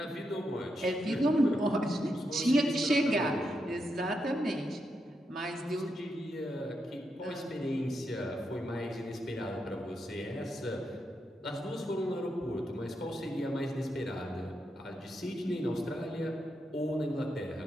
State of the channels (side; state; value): both; normal; correlation 0.84